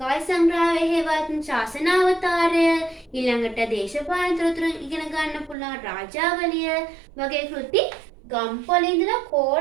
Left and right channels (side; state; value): left; drops out; at 5.6 s